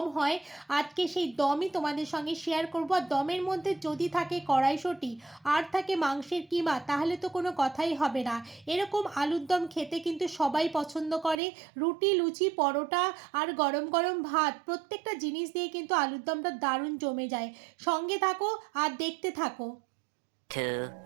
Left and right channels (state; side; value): drops out; left; at 11.4 s